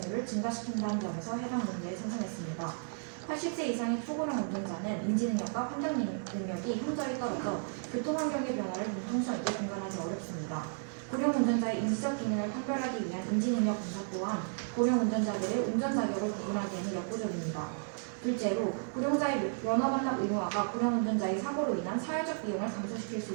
증가시킨다는 점에서 해당 문제에 찬성했습니다. 80세 이상의 초고령 운전자는 인지능력과 판단 능력이 현저히 떨어져 교통환경의 변화를 융통성 있게 공감하기 어렵습니다. 고령 운전자의 인지적 기능을 판별하기 위한 인지능력 검사 또한 고령 운전자들의 운전 자격을 구분하기에는 역부족입니다. 둘째로 고령자의 면허 반납 의무화가 고령 운전자의 사고로 인한 사회적 비용을 감소시킬 수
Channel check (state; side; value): silent; left; digital silence